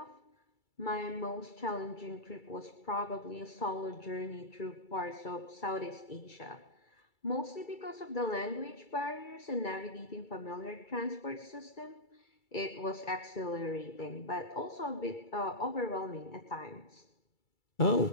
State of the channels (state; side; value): late; right; 2.3 ms